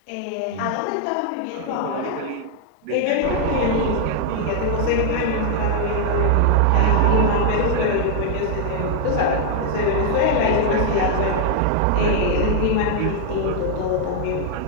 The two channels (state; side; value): different; both; correlation 0.00